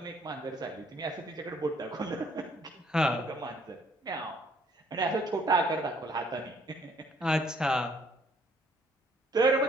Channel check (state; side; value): normal; both; correlation 0.63